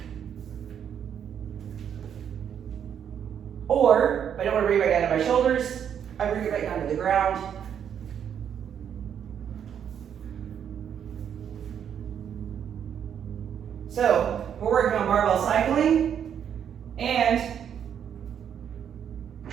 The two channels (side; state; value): left; quieter; 8.6 dB